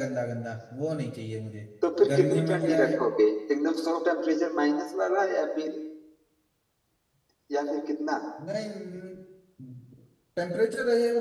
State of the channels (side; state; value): both; identical; correlation 1.00